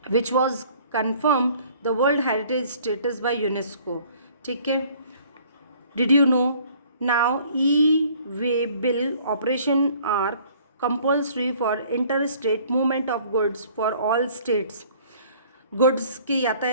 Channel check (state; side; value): inverted; both; correlation -0.55